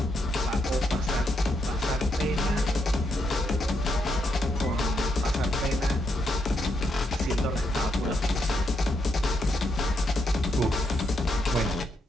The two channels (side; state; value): both; normal; correlation 0.79